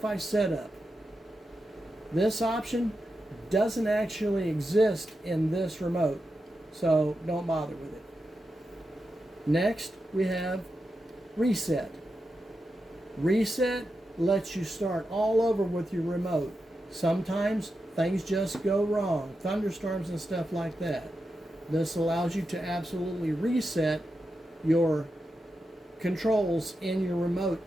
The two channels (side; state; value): both; normal; correlation 0.88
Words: setup. This option doesn't actually exist in this remote, so don't bother with it. Next, we have reset. Reset lets you start all over with your remote. Sometimes things just go wrong, thunderstorms and stuff like that. This allows you to absolutely reset your controls in your remote